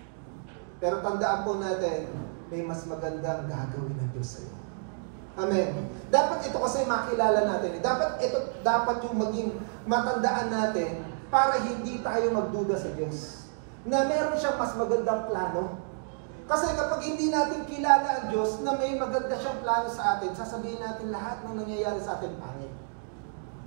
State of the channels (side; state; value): left; silent; digital silence